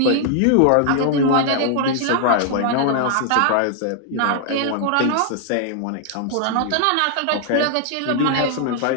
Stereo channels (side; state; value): both; different; correlation 0.00